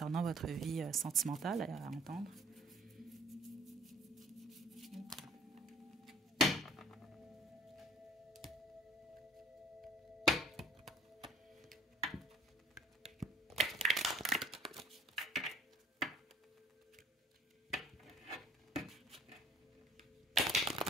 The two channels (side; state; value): both; normal; correlation 0.54